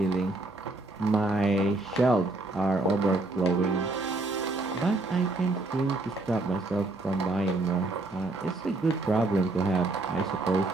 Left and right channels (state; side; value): quieter; left; 3.0 dB